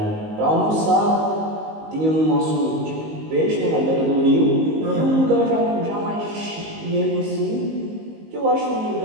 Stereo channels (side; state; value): left; late; 19 ms